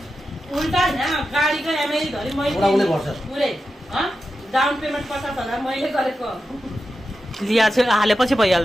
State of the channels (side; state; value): both; normal; correlation 0.90